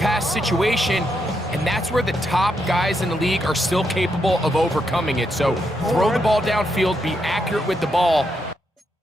situation, and that's where the top guys in the league are still capable of overcoming it. So throw the ball downfield, be accurate with the ball.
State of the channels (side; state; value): both; normal; correlation 0.80